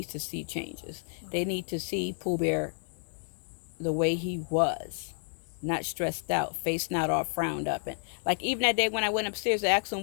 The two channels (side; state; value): right; silent; digital silence